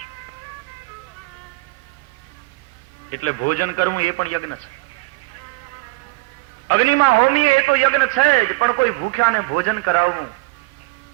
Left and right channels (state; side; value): quieter; left; 22.9 dB